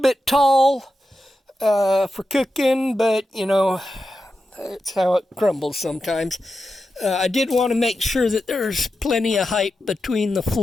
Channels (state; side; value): normal; both; correlation 0.90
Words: tall for cooking, but it's how it crumbles sometimes. I did want to make sure that there's plenty of height between the